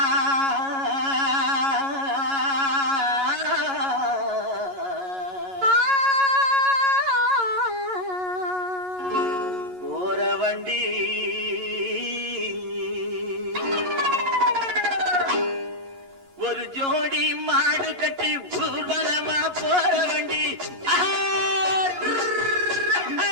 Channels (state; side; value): late; left; 11 ms